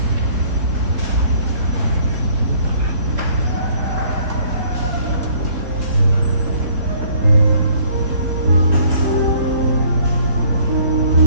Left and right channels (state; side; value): late; left; 3.6 ms